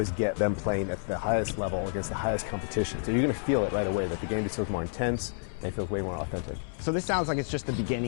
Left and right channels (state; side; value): silent; right; 58 dB below the other